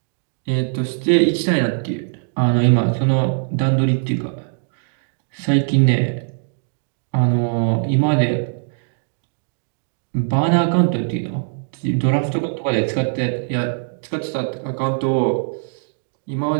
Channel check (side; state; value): left; silent; digital silence